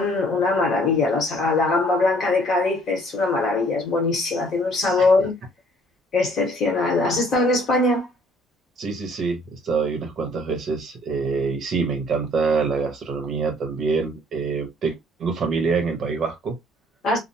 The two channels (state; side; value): normal; both; correlation 0.58